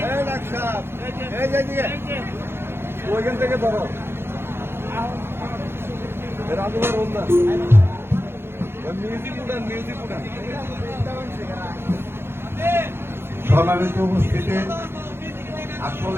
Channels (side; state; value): left; late; 0.11 ms